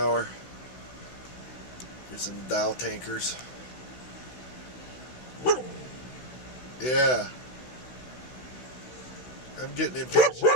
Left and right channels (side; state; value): right; late; 16 ms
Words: Here's some Dow tankers. Yeah. I'm getting